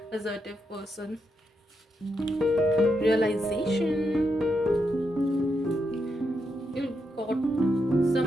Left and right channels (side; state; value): both; normal; correlation 0.83